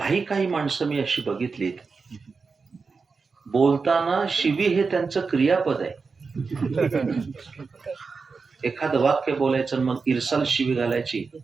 माणसं मी अशी बघितलीत, बोलताना शिवी हे त्यांचं क्रियापद आहे. एखादं वाक्य बोलायचं, मग इरसाल शिवी घालायची,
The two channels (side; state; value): left; quieter; 4.7 dB